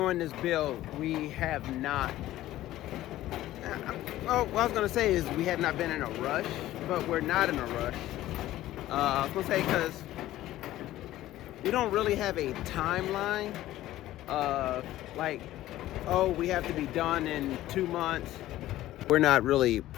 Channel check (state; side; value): quieter; right; 14.8 dB